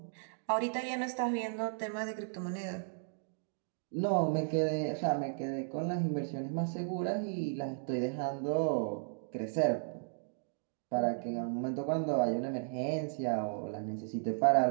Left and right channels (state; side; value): silent; left; digital silence